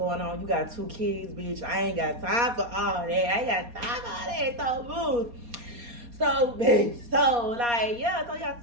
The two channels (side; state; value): left; late; 4.2 ms